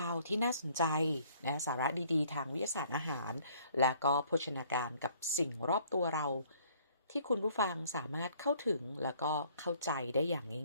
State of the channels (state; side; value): inverted; both; correlation -0.59